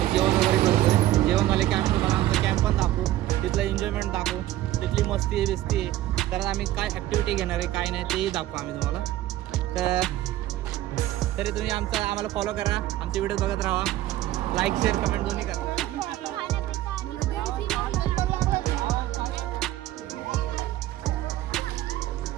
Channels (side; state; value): left; quieter; 14.7 dB